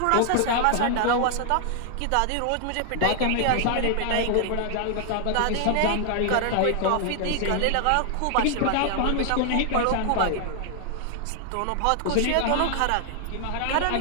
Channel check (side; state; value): both; different; correlation 0.00